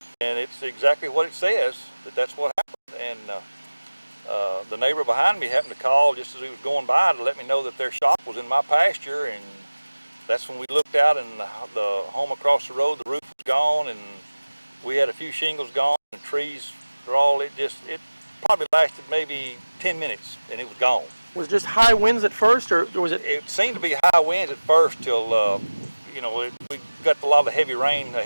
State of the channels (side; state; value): both; inverted; correlation -1.00